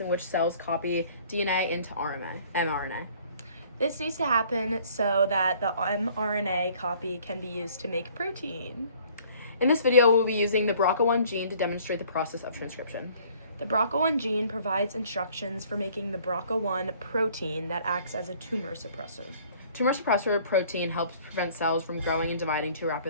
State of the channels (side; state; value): both; inverted; correlation -0.56